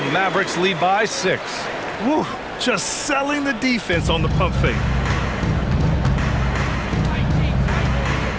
Mavericks lead by 6. Woo, just selling the defense on the pump fake.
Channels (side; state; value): both; identical; correlation 1.00